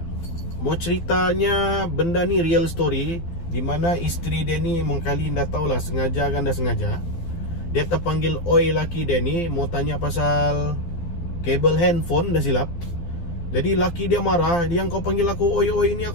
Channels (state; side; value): late; right; 12 ms